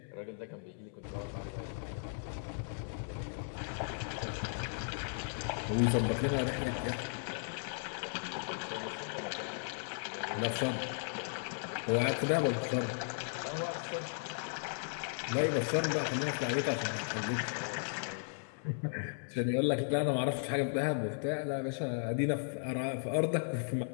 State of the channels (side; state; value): right; silent; 54 dB below the other